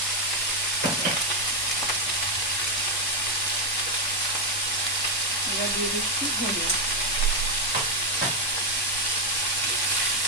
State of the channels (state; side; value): normal; both; correlation 0.03